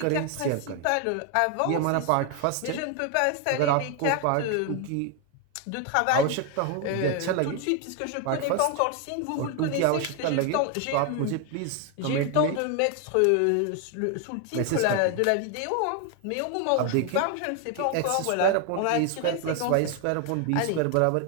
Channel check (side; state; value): both; different; correlation 0.01